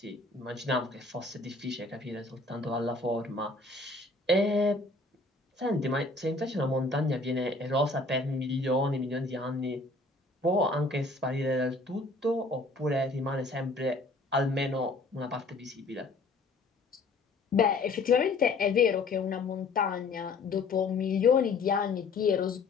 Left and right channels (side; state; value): right; quieter; 3.4 dB